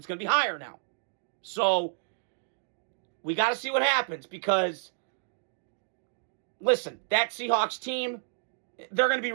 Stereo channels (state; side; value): silent; left; digital silence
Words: going to be higher now. So we got to see what happens because, listen, that Seahawks team, they're going to be